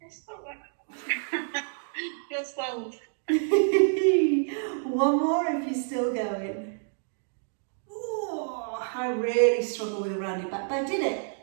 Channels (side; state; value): left; silent; digital silence